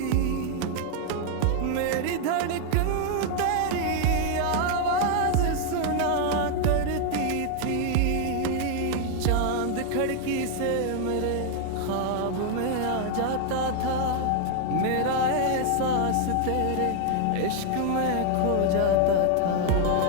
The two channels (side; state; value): both; different; correlation 0.00